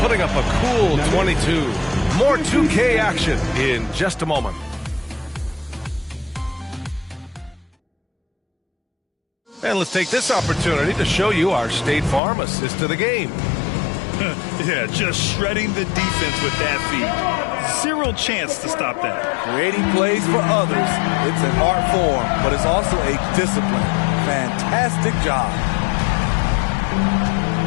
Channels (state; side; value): drops out; right; at 12.2 s